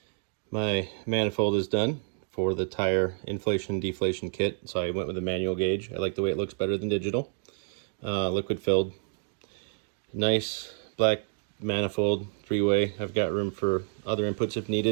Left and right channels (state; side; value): silent; left; 55 dB below the other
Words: my manifold is done for the tire inflation deflation kit. So I went with a manual gauge. I like the way it looks better than digital. Liquid filled. Nice black manifold, 3-way. I've got room for other inputs if